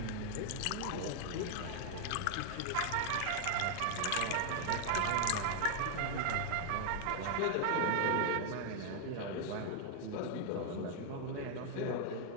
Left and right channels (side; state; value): both; different; correlation 0.00